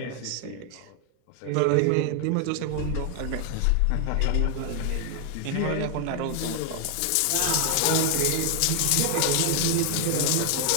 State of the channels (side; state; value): both; different; correlation 0.00